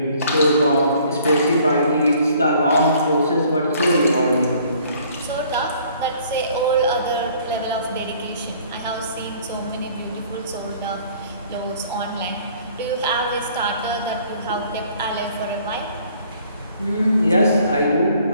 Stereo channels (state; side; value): inverted; both; correlation -0.58